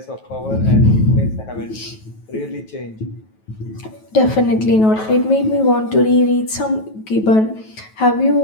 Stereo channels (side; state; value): right; late; 9.2 ms